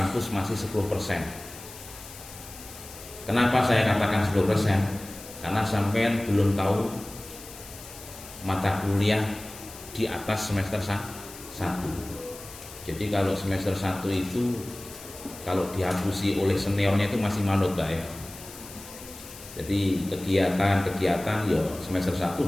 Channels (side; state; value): left; noise; hiss, 16 dB below the sound